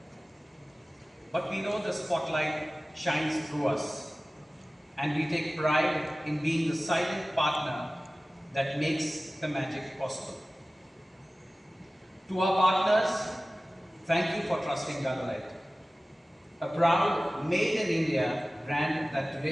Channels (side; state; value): both; normal; correlation 0.97